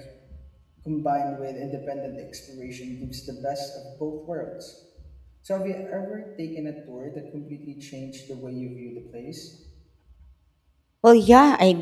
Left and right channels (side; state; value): both; identical; correlation 1.00